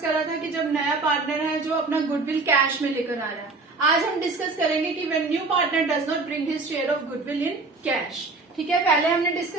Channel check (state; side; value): quieter; left; 3.8 dB